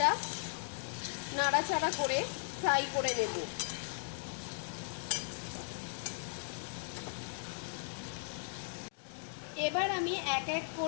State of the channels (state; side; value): silent; right; digital silence